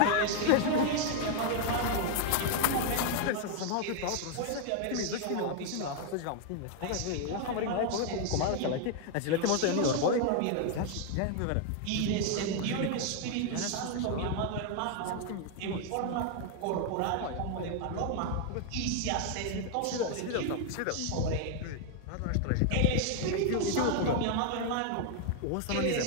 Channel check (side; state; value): both; different; correlation 0.00